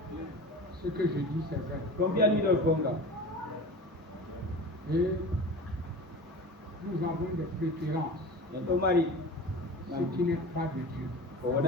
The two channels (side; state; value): both; normal; correlation 0.34